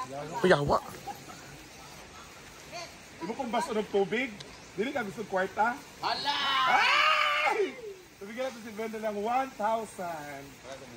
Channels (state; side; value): identical; both; correlation 1.00